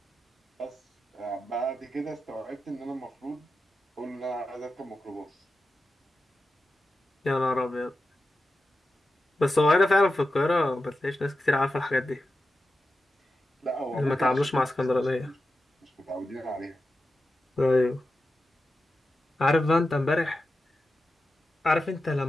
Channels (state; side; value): normal; both; correlation 0.91